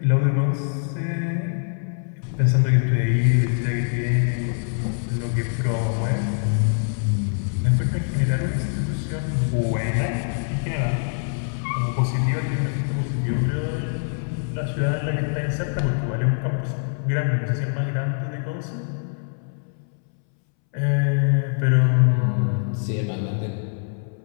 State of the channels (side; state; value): right; silent; 63 dB below the other